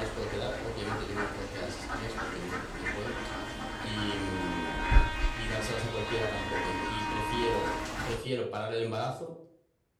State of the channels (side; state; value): both; identical; correlation 1.00